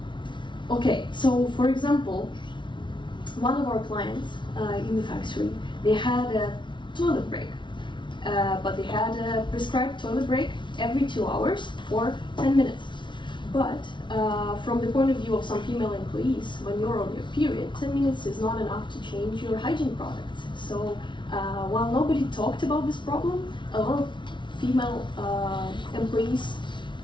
Okay, so for example, one of our clients in the factory, they had a toilet break, but they had a prescribed toilet break every 2 hours for 10 minutes. But from the point of view of some female employees, when you're on your period, 10 minutes is not enough to change your hygiene products. So while nobody talked about this problem, a lot of female employees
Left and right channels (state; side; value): late; right; 0.24 ms